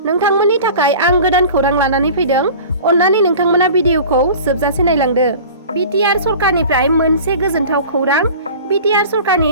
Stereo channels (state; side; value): inverted; both; correlation -0.40